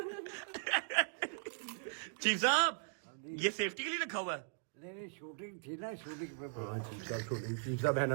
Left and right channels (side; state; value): left; silent; digital silence